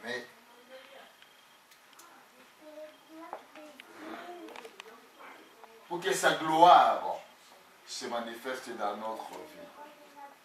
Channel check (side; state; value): both; identical; correlation 1.00